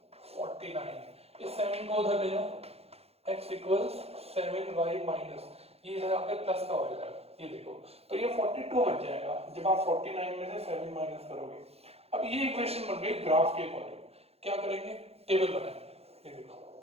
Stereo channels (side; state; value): left; late; 0.29 ms